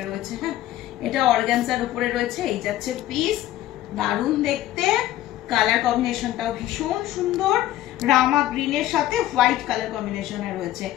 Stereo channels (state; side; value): quieter; right; 14.2 dB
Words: রয়েছে। হ্যাঁ, এটা অর্গানজার উপরে রয়েছে। এই যাচ্ছে পিস, দারুণ দেখতে। কালার কম্বিনেশনটাও ভীষণ সুন্দর, রামা গ্রিনের সাথে হোয়াইট কালার কম্বিনেশনে রয়েছে,